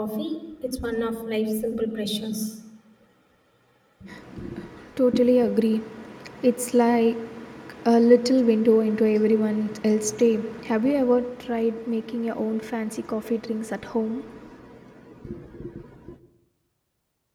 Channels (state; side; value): identical; both; correlation 1.00